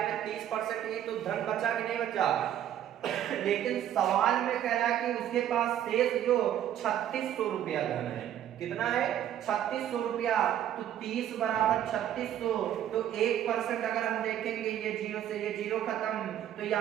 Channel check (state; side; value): quieter; left; 11.0 dB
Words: में 30% ही तो धन बचा कि नहीं बचा। लेकिन सवाल में कह रहा है कि उसके पास शेष जो 3600 रुपया धन है, कितना है 3600 रुपया, तो 30 बराबर 3600, तो 1% अगर हम देखेंगे ये जीरो से ये जीरो खत्म, तो